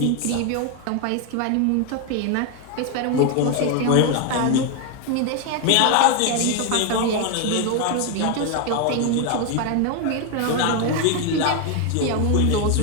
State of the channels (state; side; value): different; both; correlation 0.01